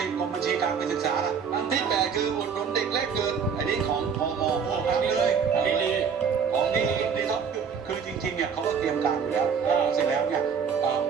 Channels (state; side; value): quieter; left; 6.6 dB